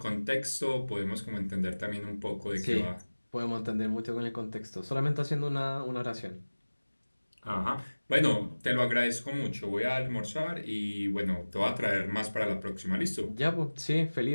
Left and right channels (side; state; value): both; inverted; correlation -1.00